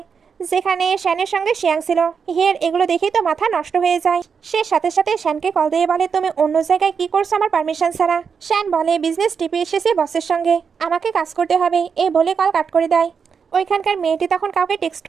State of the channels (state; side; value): quieter; left; 6.2 dB